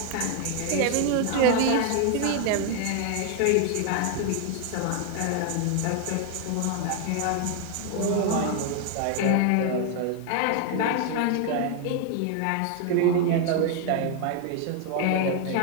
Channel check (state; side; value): different; both; correlation 0.01